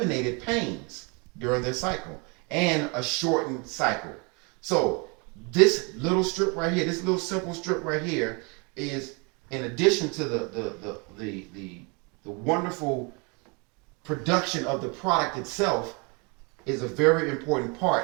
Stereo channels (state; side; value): quieter; left; 31.5 dB